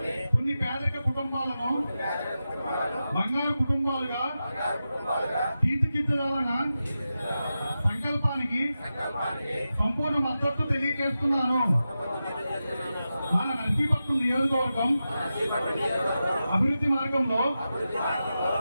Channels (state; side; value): inverted; both; correlation -0.91